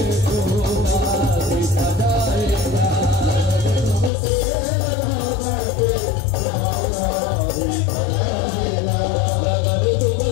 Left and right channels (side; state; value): right; drops out; at 4.1 s